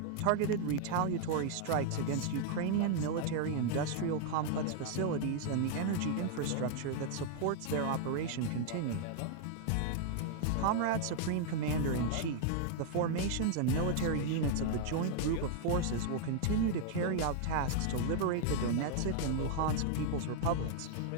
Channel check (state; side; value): different; both; correlation 0.00